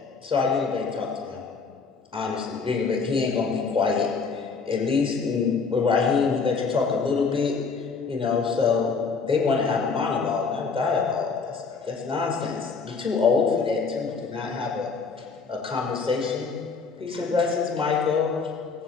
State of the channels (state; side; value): quieter; right; 4.9 dB